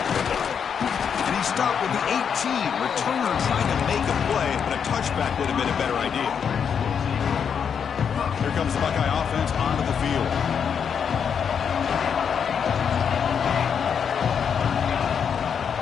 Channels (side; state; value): right; quieter; 7.2 dB